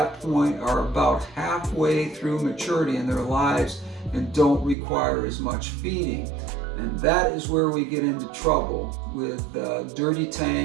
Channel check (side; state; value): left; drops out; at 4.8 s